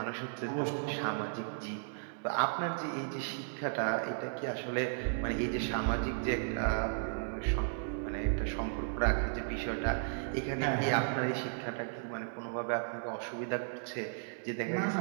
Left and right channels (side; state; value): left; silent; digital silence